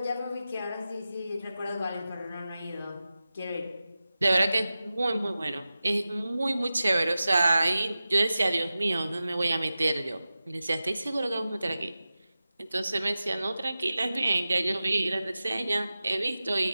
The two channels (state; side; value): inverted; both; correlation -0.94